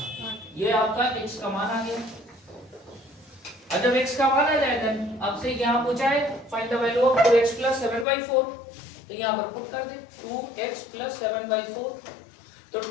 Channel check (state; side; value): drops out; right; at 8.1 s